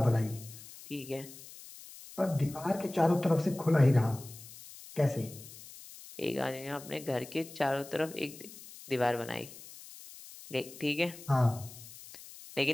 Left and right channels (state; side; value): noise; left; hiss, 17 dB below the sound